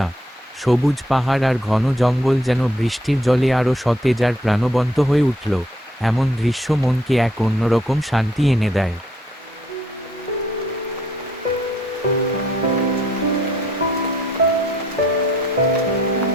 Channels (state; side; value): normal; both; correlation 0.67